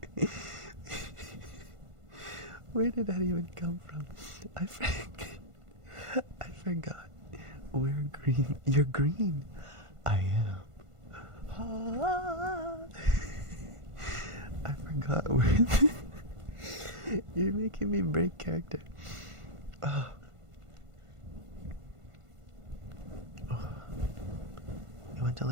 Where did that even come from? I forgot. We're green. You're green. I am. I forgot where. You're making me break character. Oh. You went to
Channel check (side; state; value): left; late; 1.5 ms